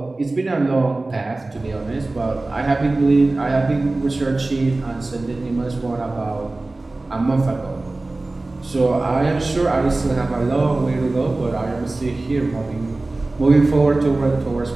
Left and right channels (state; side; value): quieter; left; 3.1 dB